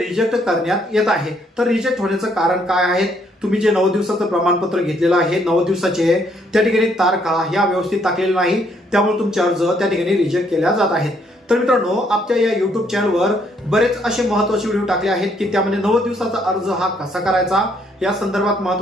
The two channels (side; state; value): both; normal; correlation 0.69